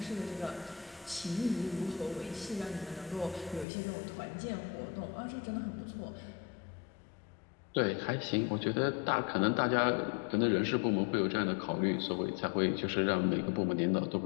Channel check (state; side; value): drops out; right; at 3.7 s